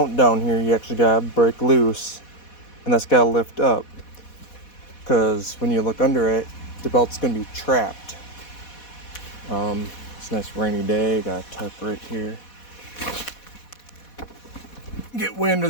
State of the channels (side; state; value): right; late; 4.1 ms